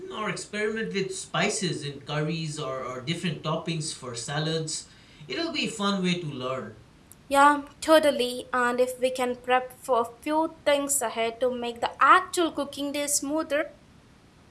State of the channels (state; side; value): identical; both; correlation 1.00